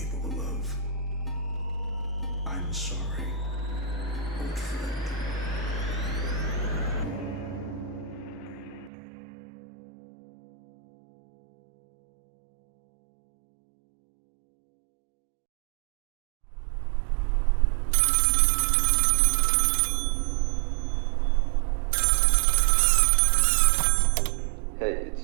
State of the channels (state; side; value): drops out; left; at 8.9 s